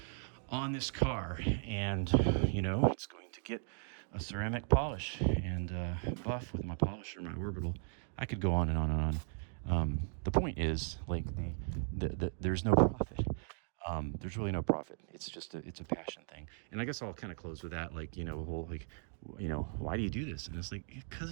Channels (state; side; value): silent; left; 53 dB below the other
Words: on this car. And it's going to get a ceramic polish and buff with my polisher, my orbital. I could go on and on and on. The point is, like, the there's no profit. There's really no profit. It's just it's a passion thing. And I guess I'll kind of close with that, like, why do you do this? And it's like,